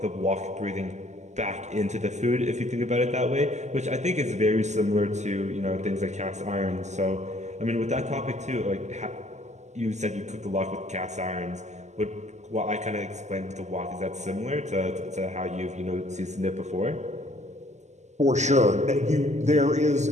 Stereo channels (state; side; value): late; left; 0.33 ms